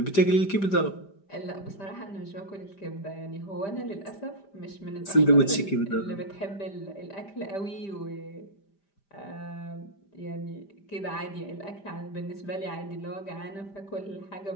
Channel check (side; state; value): right; late; 5.1 ms